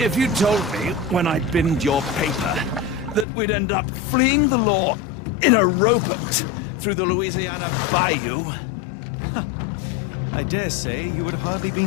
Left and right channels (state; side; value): drops out; right; at 3.2 s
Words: you told me when I binned your paper that we'd end up fleeing the law in a rowboat through the Louisiana Bayou... I dare say you would have hardly